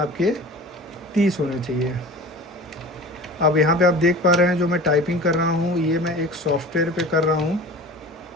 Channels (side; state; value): both; normal; correlation 0.38